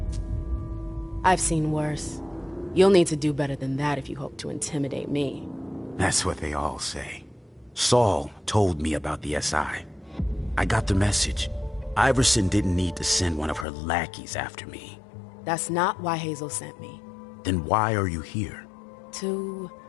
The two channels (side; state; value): right; drops out; at 13.7 s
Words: I've seen worse. You'll need to do better than that if you hope to intimidate me. That's what they all say. Saul told me about the SI. I got the message. Iverson didn't need to send one of her lackeys after me. That's not why Hazel sent me. Then why are you here? To